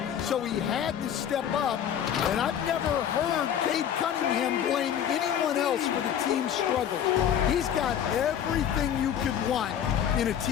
so he had to step up. And I've never heard Cade Cunningham blame anyone else for the team's struggles. He's got everything you could want in a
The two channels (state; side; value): quieter; right; 9.3 dB